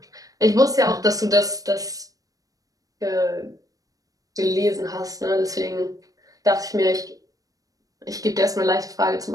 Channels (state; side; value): late; left; 0.17 ms